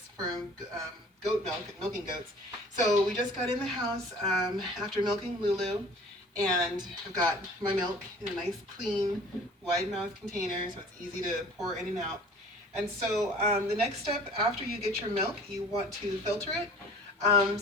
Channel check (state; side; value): normal; both; correlation 0.47